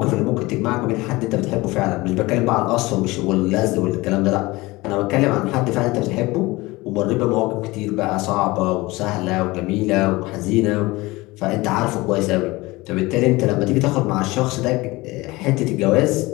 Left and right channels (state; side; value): quieter; right; 21.5 dB